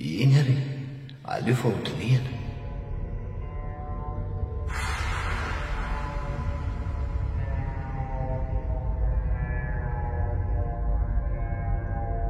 eny ary aleo fa hodinihana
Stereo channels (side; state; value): both; identical; correlation 1.00